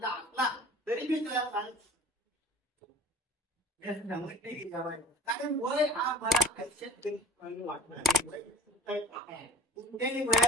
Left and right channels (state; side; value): normal; both; correlation 0.46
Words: असला तरी मी तुला कारण वय हा मला आयुष्यात वाटणार. कुठल्याही